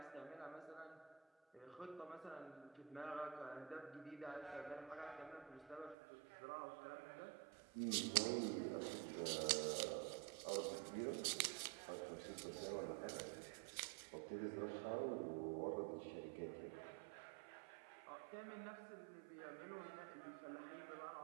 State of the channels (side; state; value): left; drops out; at 6.0 s